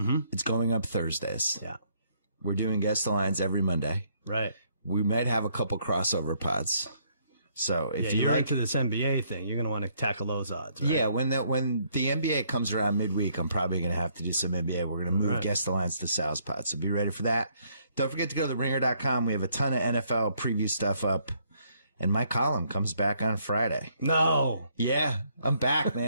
It's going up Thursdays. Yeah. We're doing Guess the Lines every Monday. Right. We might have a couple crossover pods. So if you're into this NBA thing, you're going to want to tackle those odds, right? Yeah, when the NBA comes around midweek, I'm probably going to have to do some NBA. We're going to move Guess the Lines to Sal's pod. So be ready for that. Don't forget to go to theringer.com. We have a ton of NFL preview stuff up. And my column comes back on Friday. No. Yeah, I'm back,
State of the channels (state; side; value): inverted; both; correlation -0.68